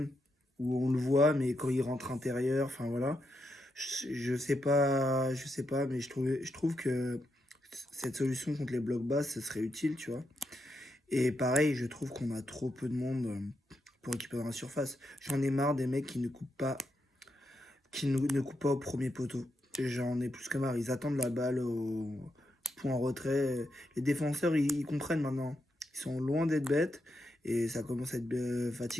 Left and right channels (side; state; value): both; normal; correlation 0.83